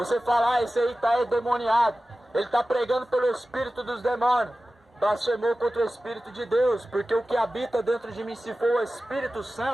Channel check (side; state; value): both; normal; correlation 0.95